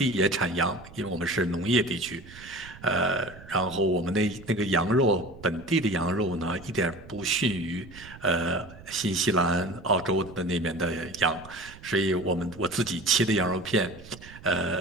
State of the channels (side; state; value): right; noise; rumble, 19 dB below the sound